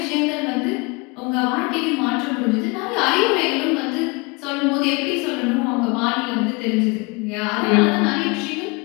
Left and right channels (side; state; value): right; quieter; 28.2 dB